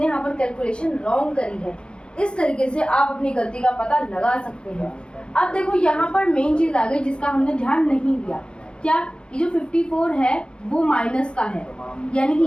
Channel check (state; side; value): late; right; 0.053 ms